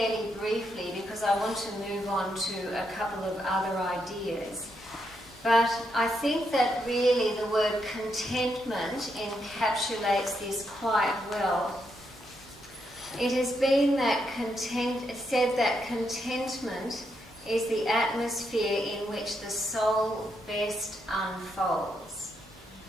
briefly because I want to move on to a couple of other ideas. But I think that really the word contentment encapsulates this quite well. It has been said that contentment is the atmosphere in which the soul best unfolds.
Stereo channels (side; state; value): both; normal; correlation 0.80